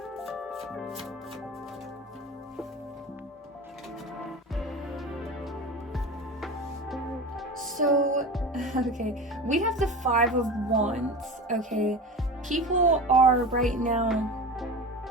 So, okay, we have the Five of Wands, okay? People are right now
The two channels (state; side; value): normal; both; correlation 0.31